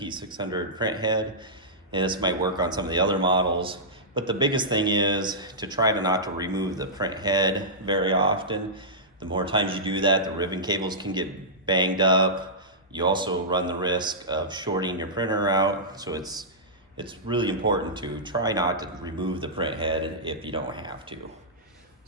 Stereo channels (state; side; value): normal; both; correlation -0.14